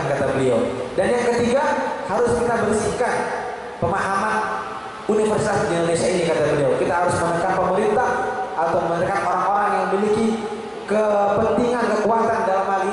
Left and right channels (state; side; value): identical; both; correlation 1.00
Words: kata beliau. Dan yang ketiga, harus kita bersihkan pemahaman universitas di Indonesia ini kata beliau. Kita harus menekan pemerintah atau menekan orang-orang yang memiliki kepentingan, kekuatan dalam hal